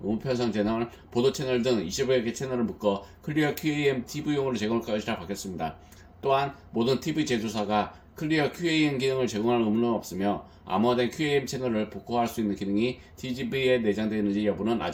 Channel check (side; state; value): both; identical; correlation 1.00